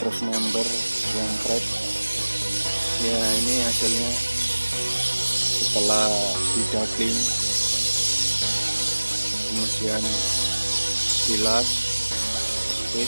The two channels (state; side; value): inverted; both; correlation -1.00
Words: member yang crack. Ya, ini hasilnya setelah didubbing, kemudian bilas. Oke,